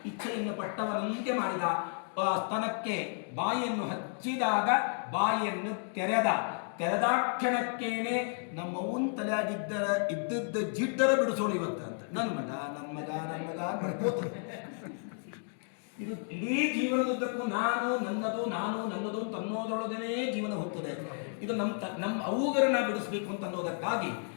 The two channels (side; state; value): right; silent; 56 dB below the other